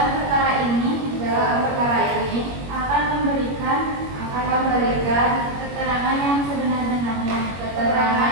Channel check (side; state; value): left; late; 21 ms